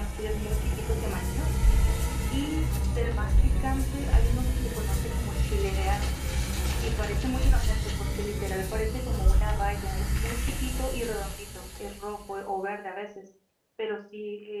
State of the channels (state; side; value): identical; both; correlation 1.00